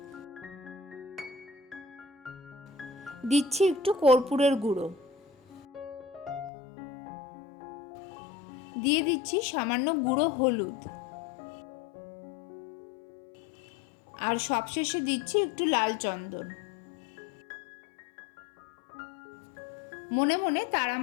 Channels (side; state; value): right; drops out; at 6.5 s